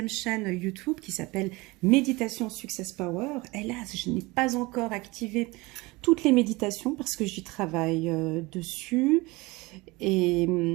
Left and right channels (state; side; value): quieter; left; 23.1 dB